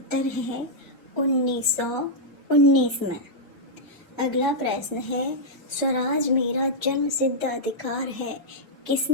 है 1919 में। अगला प्रश्न है, स्वराज मेरा जन्म सिद्ध अधिकार है,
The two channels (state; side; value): normal; both; correlation -0.07